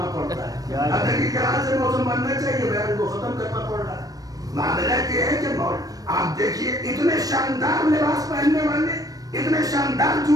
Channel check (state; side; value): late; left; 0.18 ms